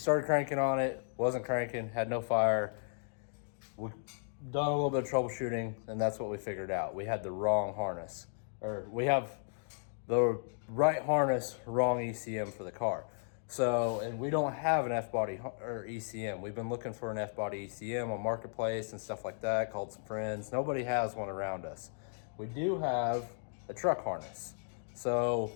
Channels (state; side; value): silent; right; digital silence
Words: cranking on it, wasn't cranking, had no fire. We done a little bit of troubleshooting, and that's what we figured out. We had the wrong harness, or we have the right harness, wrong ECM for the car. So, and we don't have an F-body or ECM. We've been looking for an F-body ECM on Marketplace and stuff like that, called some friends. Nobody has one around us. We do have a truck harness. So